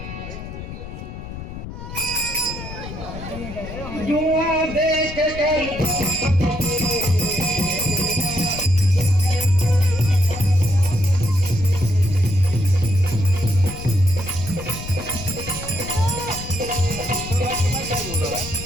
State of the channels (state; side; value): noise; left; rumble, 10 dB below the sound